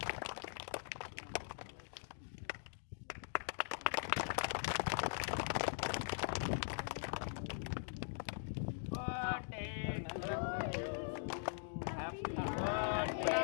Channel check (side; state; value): right; silent; digital silence